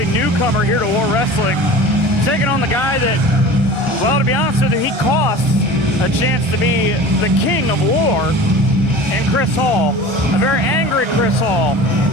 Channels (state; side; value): late; left; 1.4 ms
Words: newcomer here to War Wrestling, taking on the guy that, well, to be honest with you, he cost a chance to be the king of war, and Chris Hall, a very angry Chris Hall.